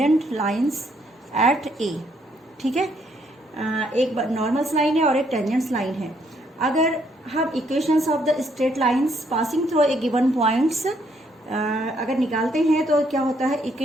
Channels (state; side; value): normal; both; correlation 0.71